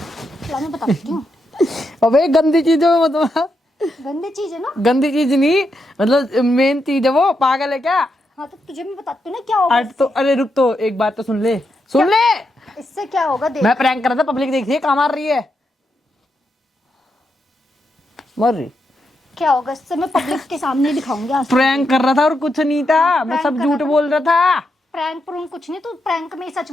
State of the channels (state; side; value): normal; both; correlation 0.83